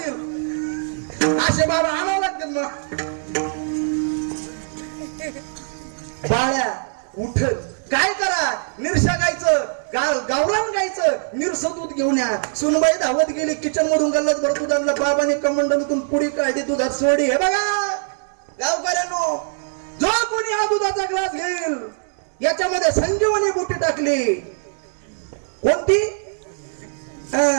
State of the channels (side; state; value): left; silent; digital silence